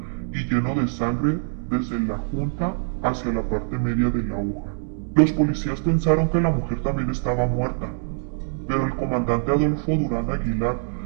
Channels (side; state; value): left; silent; digital silence